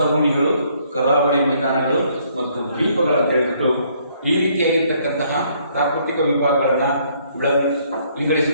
ಕರಾವಳಿ ಮೈದಾನಗಳು ಮತ್ತು ದ್ವೀಪಗಳನ್ನು ಹೇಳ್ಬಿಟ್ಟು ಈ ರೀತಿಯಾಗಿರ್ತಕ್ಕಂತಹ ಪ್ರಾಕೃತಿಕ ವಿಭಾಗಗಳನ್ನ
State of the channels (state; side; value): inverted; both; correlation -0.66